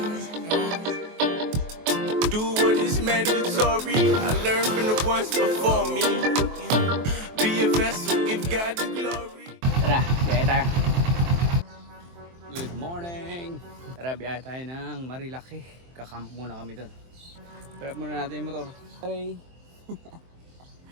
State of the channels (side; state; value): left; late; 23 ms